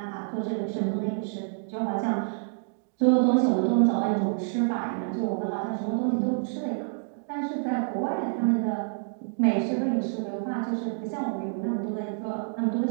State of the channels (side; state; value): left; silent; digital silence